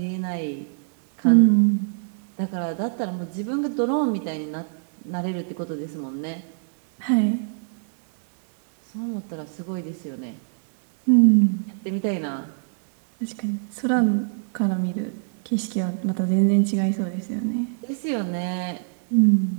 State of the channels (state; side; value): silent; left; digital silence